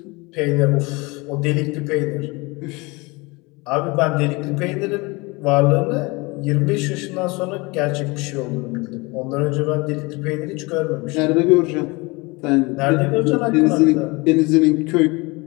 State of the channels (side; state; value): right; quieter; 25.5 dB